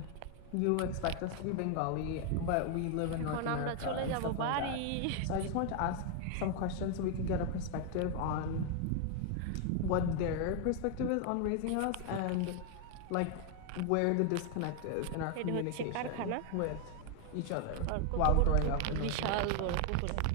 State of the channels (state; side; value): different; both; correlation 0.00